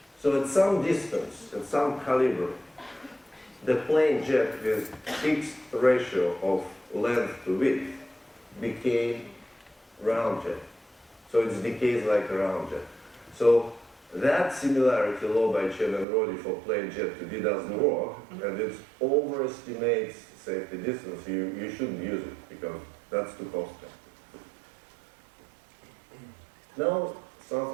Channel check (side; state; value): left; drops out; at 16.1 s